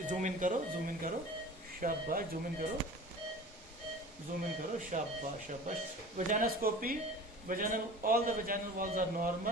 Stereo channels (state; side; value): normal; both; correlation 0.40